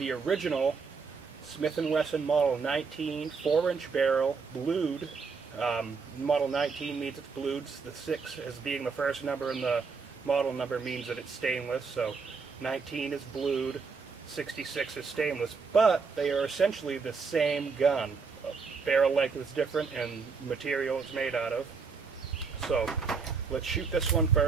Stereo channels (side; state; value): left; quieter; 5.1 dB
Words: original Smith Wesson Model 19 4-inch barrel blued. Model 19 means it's blued. The 6 as being the first number and the model number means that it's stainless. So 19 is blued, 66 is stainless, but they are essentially the same gun. Barrel length is different and material it's made out of. So let's shoot this one